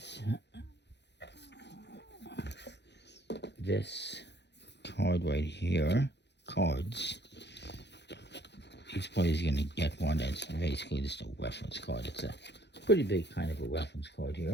this card right here. Cards. Each player is going to get one that's basically just a reference card. It's a pretty big kind of a reference card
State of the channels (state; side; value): late; right; 0.50 ms